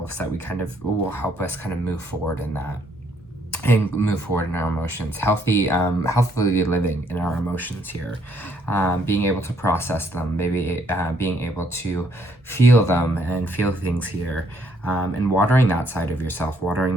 that we kind of will help us kind of move forward in that, and move forward in our emotions. Healthily living in our emotions here, being able to process them, maybe being able to feel them and feel things here, and watering that side of yourself, watering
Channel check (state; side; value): normal; both; correlation 0.69